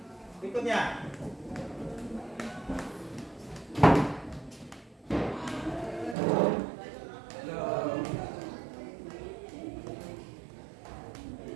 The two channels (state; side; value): drops out; left; at 6.2 s